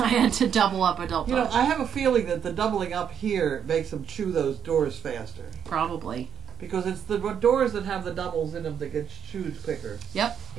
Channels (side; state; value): left; quieter; 8.4 dB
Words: had to double up adult You know, dogs. I have a feeling that the doubling up here makes them chew those doors faster. Probably. Because it's the doors that have the doubles in them that get chewed quicker. Yep.